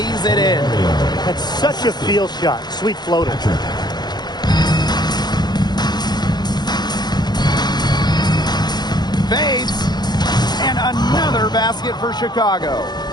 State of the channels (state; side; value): late; right; 0.20 ms